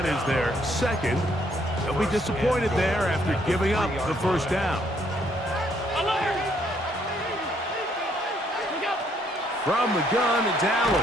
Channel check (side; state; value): both; normal; correlation 0.68